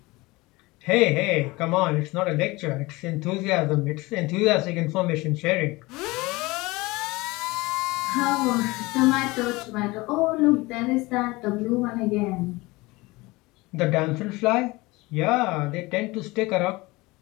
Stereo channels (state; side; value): quieter; right; 22.2 dB